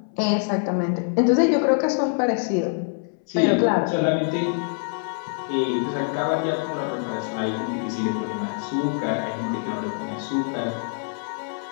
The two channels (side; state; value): right; silent; 62 dB below the other